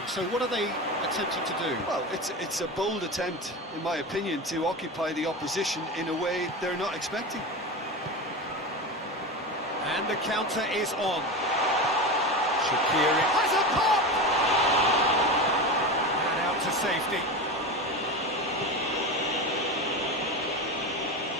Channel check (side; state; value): both; normal; correlation 0.24